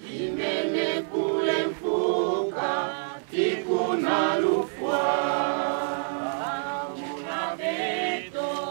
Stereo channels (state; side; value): silent; left; 60 dB below the other